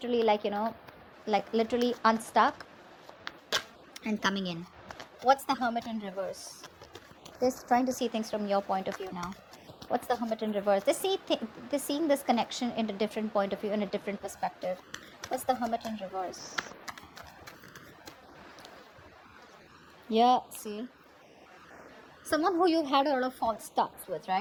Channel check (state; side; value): identical; both; correlation 1.00